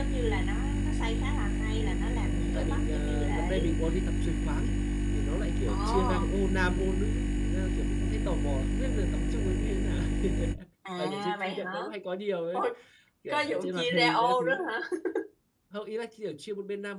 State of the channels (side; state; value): both; identical; correlation 1.00